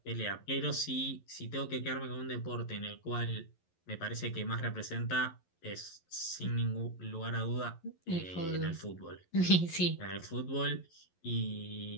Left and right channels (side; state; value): right; late; 11 ms